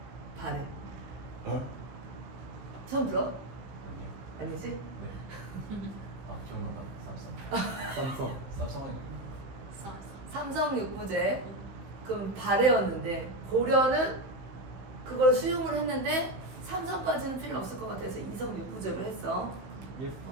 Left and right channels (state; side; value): late; left; 15 ms